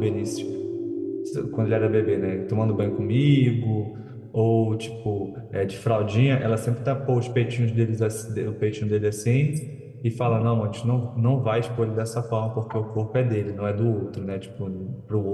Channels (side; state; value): both; identical; correlation 1.00